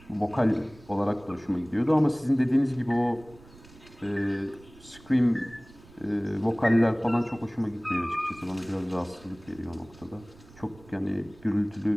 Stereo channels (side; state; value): right; noise; rumble, 23 dB below the sound